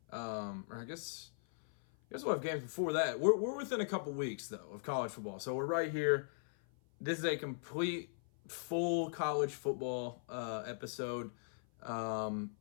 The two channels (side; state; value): right; silent; 52 dB below the other